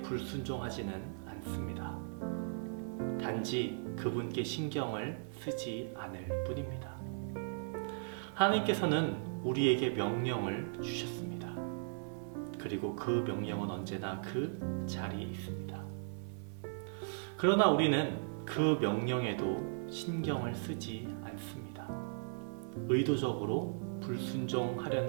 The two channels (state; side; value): silent; left; 53 dB below the other